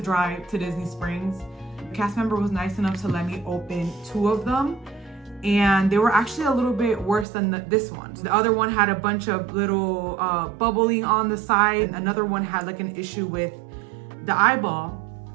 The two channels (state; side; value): drops out; left; at 7.2 s